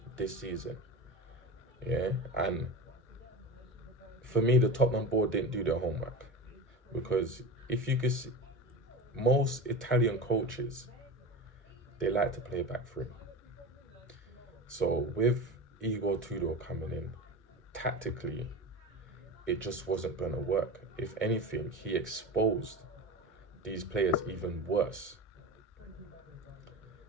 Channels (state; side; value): normal; both; correlation 0.28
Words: this season. And for me, the Tottenham board didn't do their homework, because if you could see, most Italian coaches, they like to play back three. So with Tudor coming in, tactically, it just wasn't going to work. If anything, he exposed these players even worse.